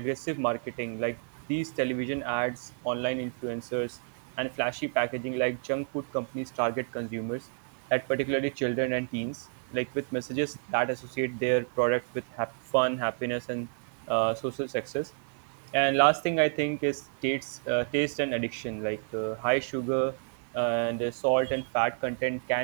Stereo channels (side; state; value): left; silent; digital silence